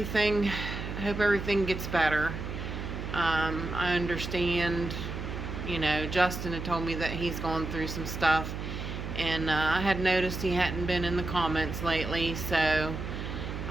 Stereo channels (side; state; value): right; noise; hum, 6 dB below the sound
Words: gets better. I understand, Justin had told me that he's going through some stuff, and I had noticed he hadn't been in the comments lately, so